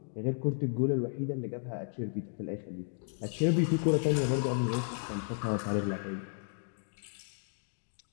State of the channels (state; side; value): silent; right; digital silence